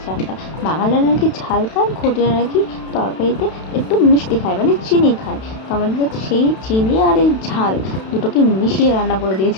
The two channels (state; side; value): late; right; 32 ms